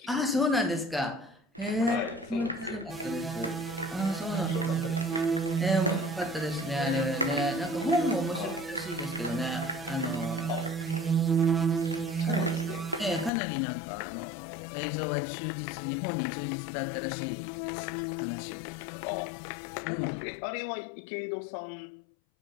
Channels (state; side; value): drops out; right; at 13.3 s